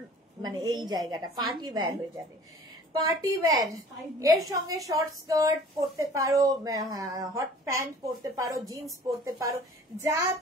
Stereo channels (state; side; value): normal; both; correlation 0.48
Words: মানে এই জায়গাটা পার্টি ওয়্যার হয়ে যাবে। পার্টি ওয়্যার, এর সঙ্গে শর্ট স্কার্ট পরতে পারো, হট প্যান্ট পরতে পারো, জিন্স পরতে পারো, যা